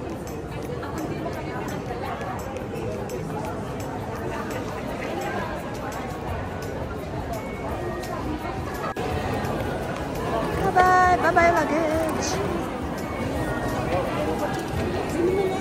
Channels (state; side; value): identical; both; correlation 1.00